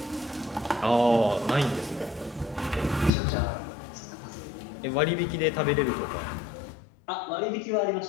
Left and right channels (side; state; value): right; drops out; at 3.1 s